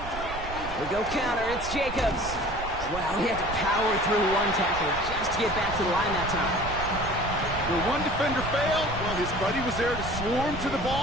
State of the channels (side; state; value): right; noise; rumble, 10 dB below the sound